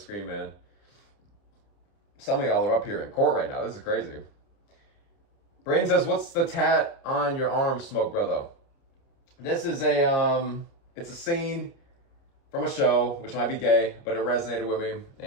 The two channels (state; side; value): late; right; 30 ms